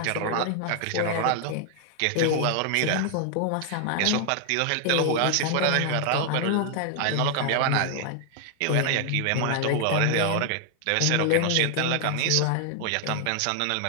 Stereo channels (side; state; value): both; different; correlation 0.00